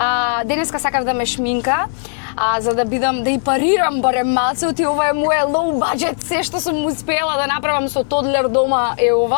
денеска сакав да ме шминка, за да бидам, да и парирам барем малце, оти ова е моје low budget, се што сум успела да направам со тодлер дома е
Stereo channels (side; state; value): right; silent; 68 dB below the other